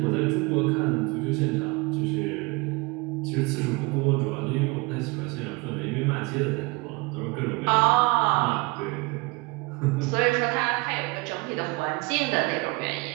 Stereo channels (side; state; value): left; quieter; 26.1 dB